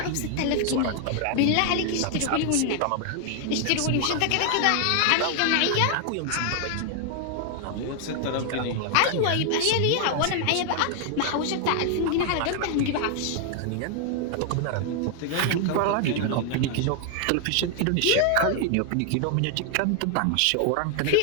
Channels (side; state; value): both; different; correlation 0.00